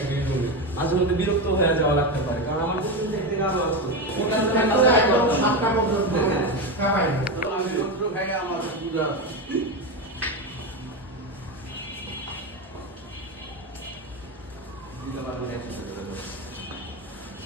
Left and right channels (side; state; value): both; normal; correlation 0.16